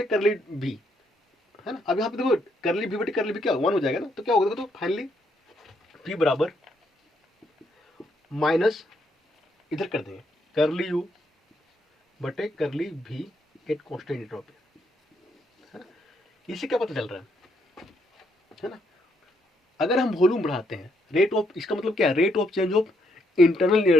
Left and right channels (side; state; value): both; normal; correlation 0.74